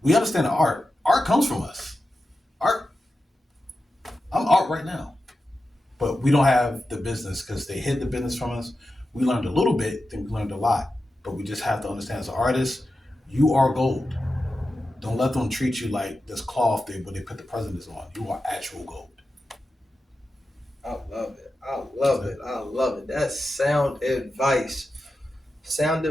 We understand the art. Art comes from us. Art. I'm art right now. But we don't have the business because they hid the business from us. We learned a little bit, then we learned a lot. But we just have to understand as an artist, you are gold. Don't let them treat you like this cloth where they put the presidents on. You are actual gold. I love it. I love it. That's sound advice. Sound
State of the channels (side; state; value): both; normal; correlation 0.91